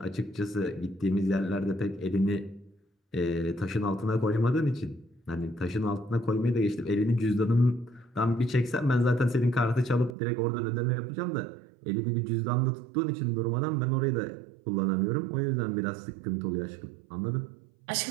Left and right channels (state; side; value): drops out; left; at 10.2 s